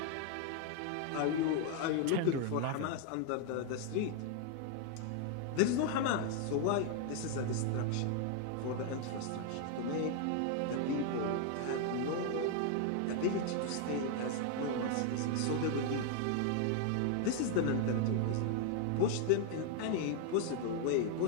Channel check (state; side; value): different; both; correlation 0.00